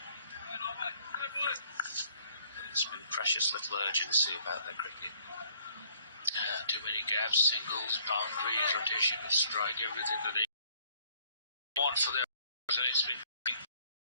There's been precious little urgency about their cricket. Too many gaps, singles, boundaries, rotation of strike, everything that they want for their and it's been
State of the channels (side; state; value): both; inverted; correlation -0.62